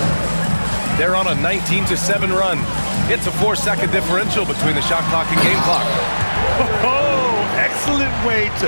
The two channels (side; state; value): both; inverted; correlation -1.00